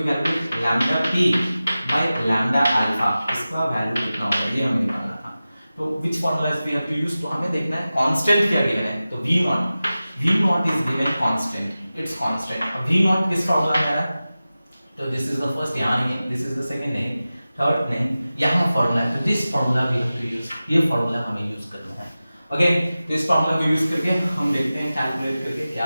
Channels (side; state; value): both; inverted; correlation -0.95